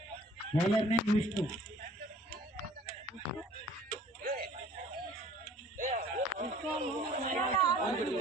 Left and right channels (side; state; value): both; normal; correlation 0.52